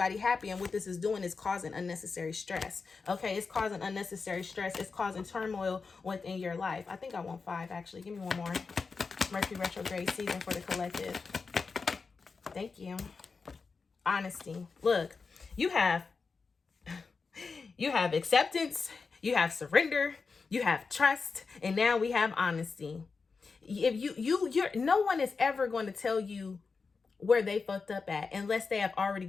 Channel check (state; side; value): quieter; right; 4.7 dB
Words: happy, and what this is doing is causing unnecessary stress. Okay, it's causing unnecessary stress. It's causing turmoil within your life. I think I want 5, actually. Give me one more. Mercury retrograde season for the collective. Thank you. Honesty. Look, you have acceptance, you have surrender, you have trust, and now we have honesty. If you're no one is ever going to tell you where they fucked up at unless they have already